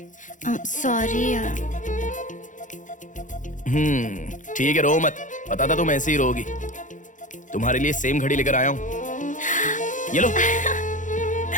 सॉरी यार। ठीक है, रो मत। पता था तुम ऐसे ही रोगी। तुम्हारे लिए सेम घड़ी लेकर आया हूँ। ये लो।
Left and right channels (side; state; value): right; late; 0.37 ms